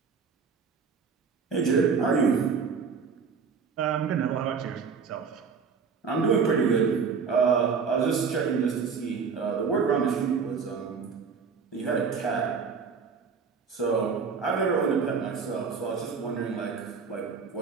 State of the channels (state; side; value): quieter; left; 5.7 dB